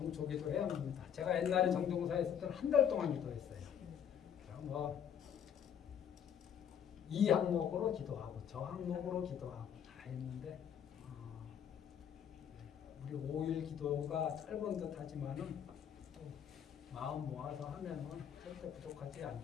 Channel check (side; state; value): right; quieter; 8.7 dB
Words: 해야 합니다. 제가 옛날에 정종사에 있을 때는 한 달 동안 기도했어요. 이 항목으로 기도하고 저 항목으로 기도하고 다 했는데 우리 5일 기도가 짧은 듯 하지만은 마음 모아서 하면은 절대 부족하지